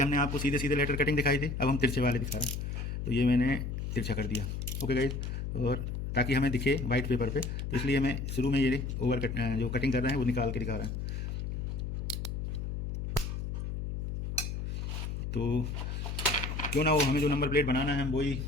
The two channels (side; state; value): left; noise; hum, 4 dB below the sound